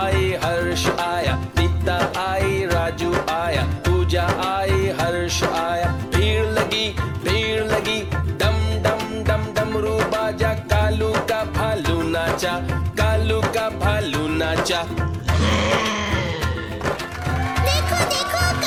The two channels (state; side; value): identical; both; correlation 1.00